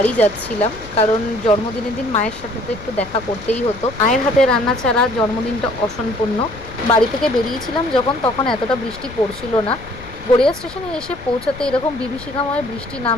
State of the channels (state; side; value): noise; left; rumble, 16 dB below the sound